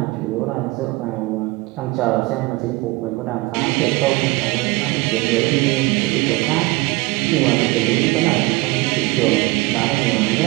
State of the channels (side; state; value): left; quieter; 22.1 dB